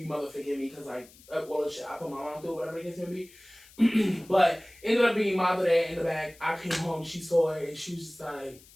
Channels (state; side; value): noise; left; hiss, 24 dB below the sound